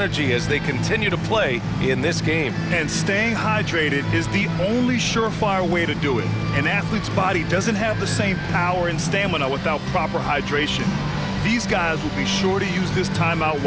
as they continue to play in this game. And staying hydrated is the only surefire way to do it. An athlete's body doesn't have the same power and stamina without proper hydration. These guys will be sure to use this timeout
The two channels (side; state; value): both; identical; correlation 1.00